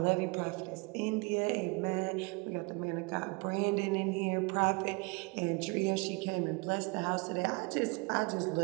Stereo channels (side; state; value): left; quieter; 29.0 dB